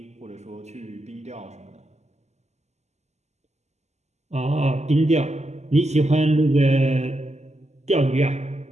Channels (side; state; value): left; late; 0.33 ms